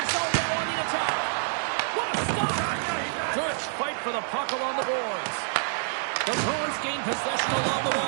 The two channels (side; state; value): left; silent; 60 dB below the other